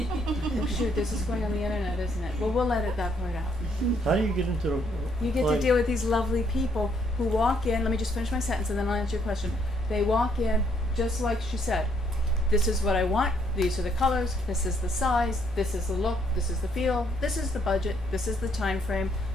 shoot, this is going on the internet, isn't it? Well, we'll edit that part out. How do you get into the You get to client- deal with these lovely people who walk in, let me just finish my sentence and then I'll answer your question. They walk in, just like she said, this is what I want, these are the colors, this is the size, this is the look, this is the feel, this is the budget, this is the time frame,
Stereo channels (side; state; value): both; normal; correlation 0.70